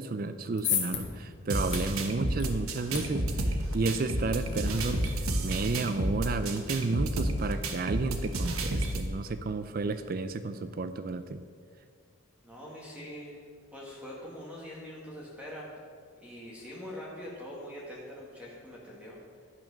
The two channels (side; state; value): both; normal; correlation 0.61